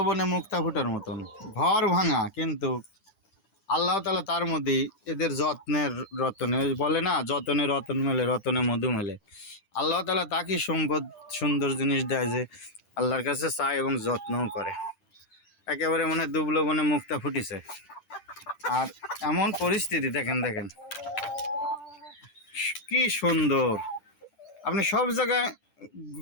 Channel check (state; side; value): late; right; 10 ms